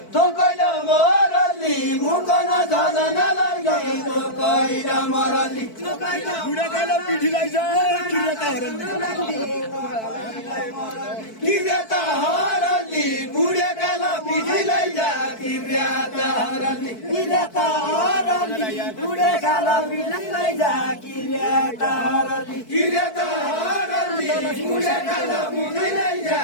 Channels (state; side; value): late; right; 4.6 ms